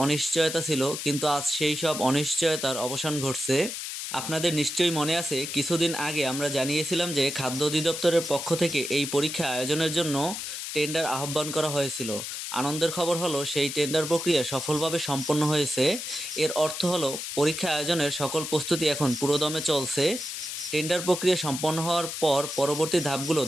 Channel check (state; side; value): noise; left; hiss, 6 dB below the sound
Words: অনিশ্চয়তা ছিল, কিন্তু আজ সেই সব অনিশ্চয়তার অবসান ঘটছে। আপনাদের নিশ্চয়ই মনে আছে, কিছুদিন আগে আমরা জানিয়েছিলাম যে খাদ্য অধিদপ্তরের পক্ষ থেকে এই পরীক্ষা আয়োজনের জন্য টেন্ডার আহ্বান করা হয়েছিল। আনন্দের খবর হলো, সেই টেন্ডার প্রক্রিয়া সফলভাবে সম্পন্ন হয়েছে। এর অর্থ হলো পরীক্ষা আয়োজনের সকল প্রস্তুতি এখন পুরোদমে চলছে। টেন্ডার প্রক্রিয়া সম্পন্ন হওয়ার পর পরবর্তী ধাপগুলো